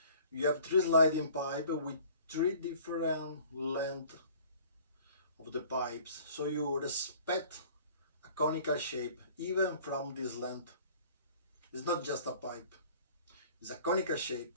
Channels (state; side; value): inverted; both; correlation -0.50